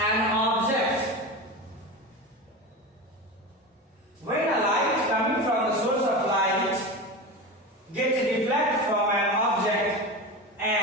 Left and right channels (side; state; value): both; normal; correlation 0.25